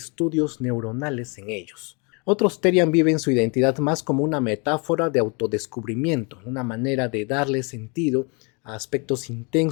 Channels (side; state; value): right; quieter; 32.5 dB